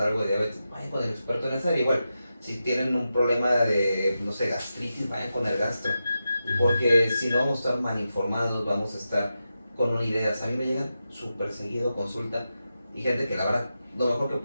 algo de diabetes, vayan con el experto en esa área. Igual, si tienen un problema de, no sé, gastritis, vayan con el gastro. Porque si no, vamos a estar mal informados, vamos a estar con una idea. A mí me llegan súper seguido a consulta y gente que la verdad, lo mejor que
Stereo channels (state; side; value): inverted; both; correlation -0.89